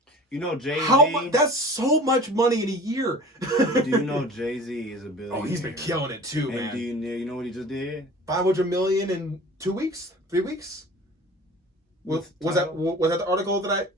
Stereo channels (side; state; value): both; normal; correlation 0.42